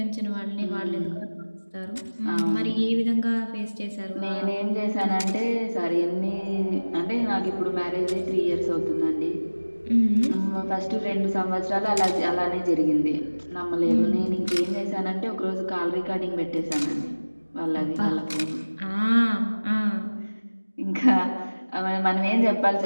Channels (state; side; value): inverted; both; correlation -1.00